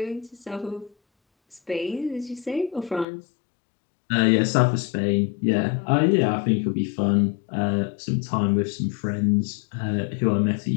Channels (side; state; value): right; drops out; at 3.1 s